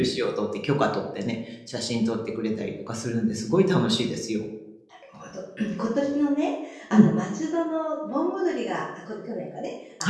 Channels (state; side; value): identical; both; correlation 1.00